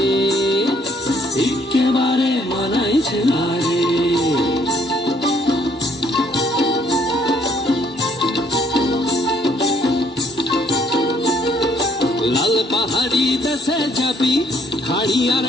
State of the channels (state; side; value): normal; both; correlation 0.66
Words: একেবারে মানাইছে না রে লাল পাহাড়ি দেশে যাবি হাড়ি আর